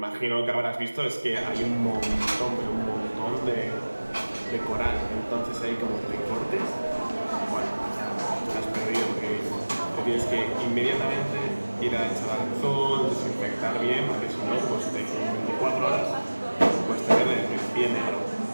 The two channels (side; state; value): both; inverted; correlation -1.00